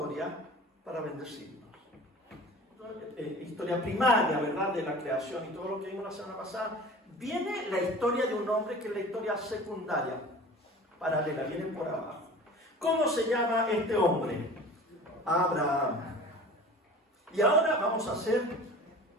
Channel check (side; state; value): both; normal; correlation 0.40